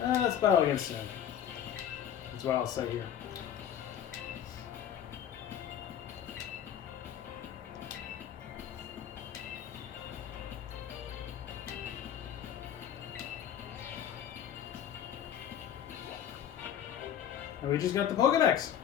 Let's battle against him. That's what I'll say here. And we just got the Pokedex.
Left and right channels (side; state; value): right; quieter; 9.7 dB